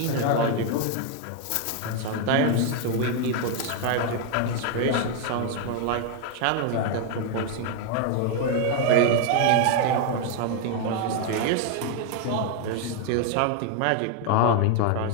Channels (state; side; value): different; both; correlation 0.01